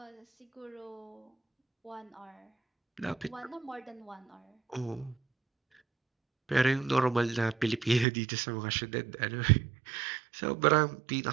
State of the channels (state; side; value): drops out; left; at 8.1 s